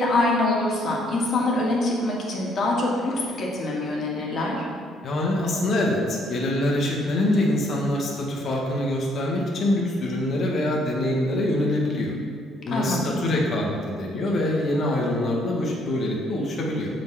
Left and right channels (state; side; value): normal; both; correlation 0.68